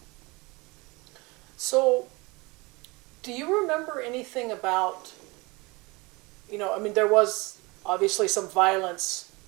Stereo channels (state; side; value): quieter; left; 25.2 dB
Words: So, do you remember anything about, there was obviously some violence